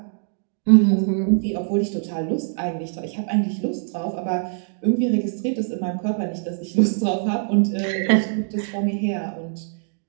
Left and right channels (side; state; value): left; silent; digital silence